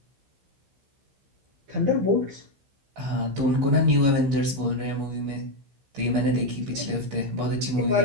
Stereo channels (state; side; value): late; left; 15 ms